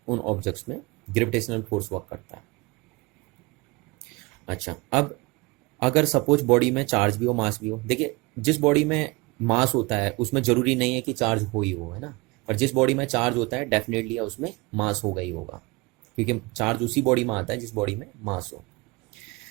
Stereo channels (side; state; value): left; quieter; 25.2 dB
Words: उन ऑब्जेक्ट्स में ग्रेविटेशनल फोर्स वर्क करता है। अच्छा, अब अगर सपोज बॉडी में चार्ज भी हो मास भी हो, देखिए जिस बॉडी में मास होता है उसमें जरूरी नहीं है कि चार्ज हो ही हो, है ना। पर जिस बॉडी में चार्ज होता है डेफिनेटली उसमें मास होगा ही होगा, क्योंकि चार्ज उसी बॉडी में आता है जिस बॉडी में मास हो।